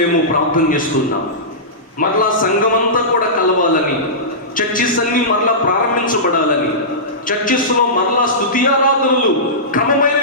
ప్రార్థన చేస్తున్నాం. మరలా సంఘమంతా కూడా కలవాలని, చర్చిస్ అన్ని మరలా ప్రారంభించబడాలని, చర్చిస్లో మరలా స్తుతి ఆరాధనలు క్రమమైన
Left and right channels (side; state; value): both; normal; correlation -0.18